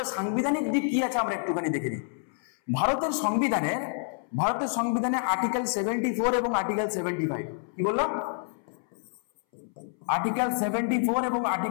সাংবিধানিক দিক কি আছে আমরা একটুখানি দেখে নিই। ভারতের সংবিধানে আর্টিকেল 74 এবং আর্টিকেল 75, কি বললাম, আর্টিকেল 74 এবং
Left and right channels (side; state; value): right; silent; 59 dB below the other